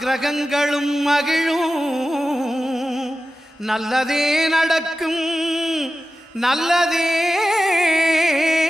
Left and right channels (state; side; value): normal; both; correlation 0.93